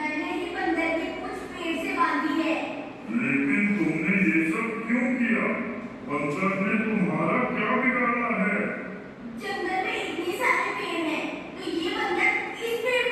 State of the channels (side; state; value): both; identical; correlation 1.00